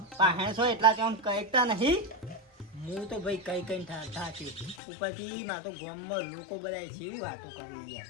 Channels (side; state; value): right; drops out; at 4.8 s